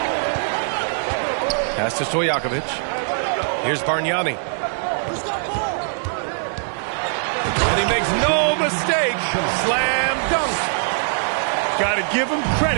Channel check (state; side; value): silent; left; digital silence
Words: Pass to Stojakovic. Here's Bargnani. And he makes no mistake. Slam dunk. Got to give him